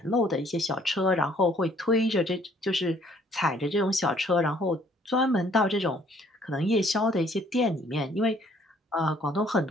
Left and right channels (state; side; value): normal; both; correlation 0.61